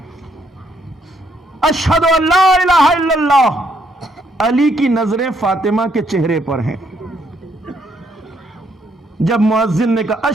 اشہد ان لا الہ الا اللہ. علی کی نظریں فاطمہ کے چہرے پر ہیں. جب مؤذن نے کہا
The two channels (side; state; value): both; normal; correlation 0.71